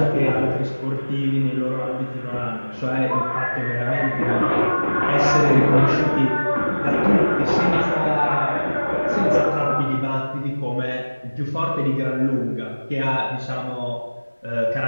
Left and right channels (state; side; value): inverted; both; correlation -1.00